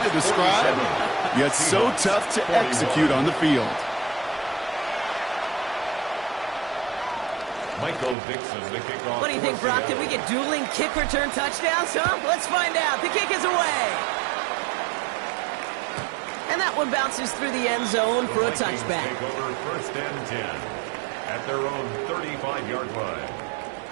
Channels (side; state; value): left; drops out; at 8.2 s